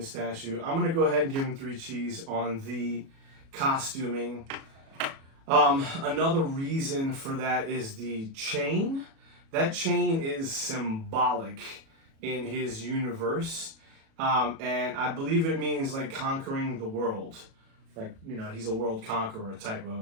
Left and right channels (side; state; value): left; late; 37 ms